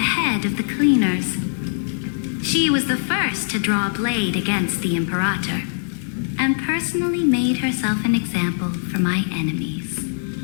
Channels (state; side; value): silent; right; 62 dB below the other